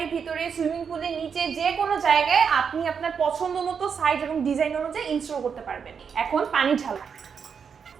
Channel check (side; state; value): left; quieter; 6.6 dB